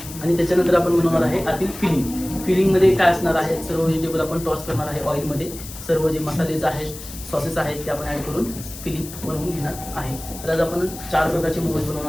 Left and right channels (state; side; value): noise; left; hiss, 13 dB below the sound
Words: आणि त्याच्यानंतर आपण बनवणार आहे आतील फिलिंगमध्ये काय असणार आहे सर्व व्हेजिटेबल आपण टॉस करणार आहे ऑइलमध्ये. सर्व जे मसालेज आहेत सॉसेस आहेत ते आपण ॲड करून फिलिंग बनवून घेणार आहे. तर आज आपण 4 प्रकारचे मोमोज